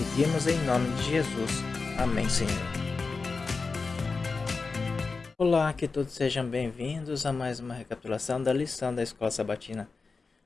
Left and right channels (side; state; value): right; quieter; 4.3 dB